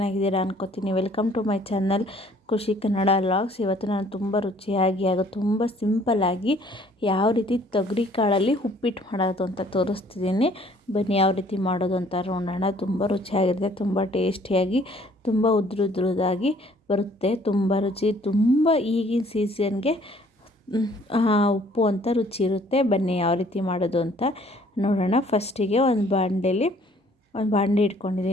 ಅನ್ಕೋತೀನಿ. ವೆಲ್ಕಮ್ ಟು ಮೈ ಚಾನಲ್ ಖುಷಿ ಕನ್ನಡ ವ್ಲಾಗ್ಸ್. ಇವತ್ತು ನಾನು ತುಂಬ ರುಚಿಯಾಗಿ ಹಾಗೂ ತುಂಬ ಸಿಂಪಲ್ಲಾಗಿ ಯಾವ ರೀತಿ ತೊಗರಿ ಕಾಳಲ್ಲಿ ಉಪ್ಪಿಟ್ಟು ಮಾಡೋದು ಅಂತ ತೋರಿಸ್ತಿದ್ದೀನಿ. ಬನ್ನಿ ಯಾವ ರೀತಿ ಮಾಡೋದು ಅಂತ ನೋಡೋಣ. ತುಂಬ ರುಚಿಯಾಗಿರುತ್ತೆ, ತುಂಬ ಟೇಸ್ಟಿಯಾಗಿ, ತುಂಬ ಉದ್ರುದಾಗಿ ಬರುತ್ತೆ. ತುಂಬ ರುಚಿ, ತುಂಬ ಈಗಿನ ಸೀಸನ್ಗೆ ಉಪ್ಪು ಅಂತ ರುಚಿ ಇರುತ್ತೆ. ಬನ್ನಿ ಯಾವ ರೀತಿ ಮಾಡೋದು ಅಂತ ನೋಡೋಣ. ಫಸ್ಟಿಗೆ ಒಂದು ಬಾಂಡೆ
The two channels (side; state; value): both; normal; correlation 0.58